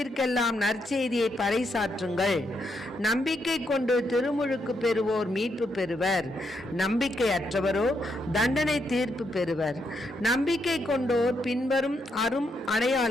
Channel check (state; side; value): normal; both; correlation 0.79